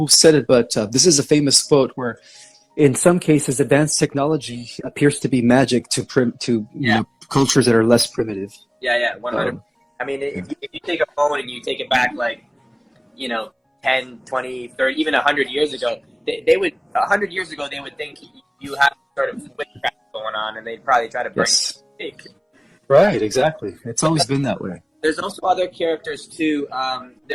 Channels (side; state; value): both; identical; correlation 1.00